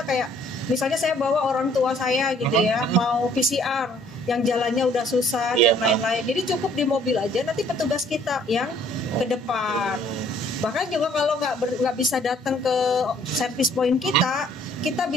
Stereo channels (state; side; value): normal; both; correlation 0.60